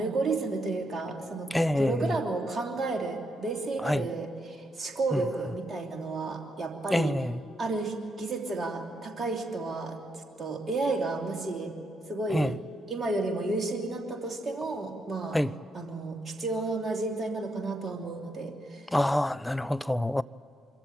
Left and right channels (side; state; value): both; normal; correlation 0.80